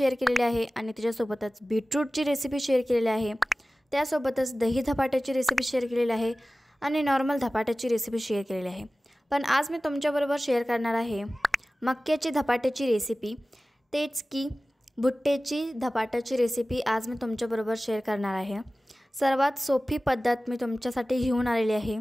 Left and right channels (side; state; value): both; normal; correlation 0.97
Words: केलेली आहे आणि त्याच्यासोबतच बीटरूटची रेसिपी शेअर केलेली आहे। त्यासोबतच दही धपाट्याची रेसिपी शेअर केलेली आहे आणि नॉर्मल धपाट्याची रेसिपी शेअर केलेली आहे। पण आज मी तुमच्याबरोबर शेअर करणार आहे मक्याची धपाट्याची रेसिपी, तेच की भुट्ट्याची धपाट्याची रेसिपी आज मी तुमच्याबरोबर शेअर करणार आहे। सर्वात सोपी पद्धत मी तुमच्यासाठी घेऊन आलेली आहे